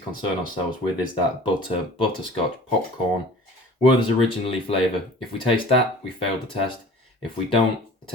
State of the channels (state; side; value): normal; both; correlation 0.45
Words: concern ourselves with is that butterscotch, popcorn, Werther's originally flavour. If we taste that, we failed the test. If we don't, the